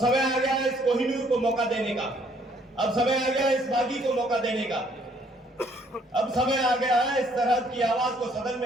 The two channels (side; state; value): both; normal; correlation 0.64